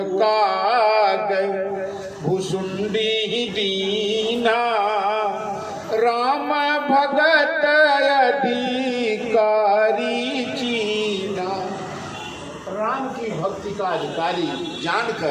कागभूषुंडी दीना, राम भगत अधिकारी चीना। राम की भक्ति का अधिकारी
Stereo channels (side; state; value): both; identical; correlation 1.00